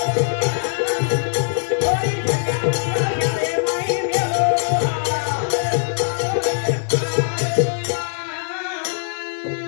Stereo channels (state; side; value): silent; right; 65 dB below the other